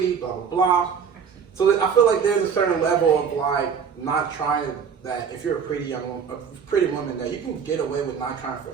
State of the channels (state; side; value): quieter; left; 6.8 dB